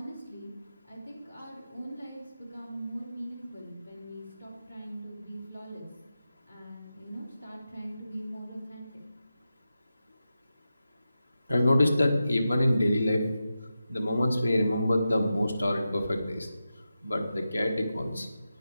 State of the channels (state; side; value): inverted; both; correlation -0.91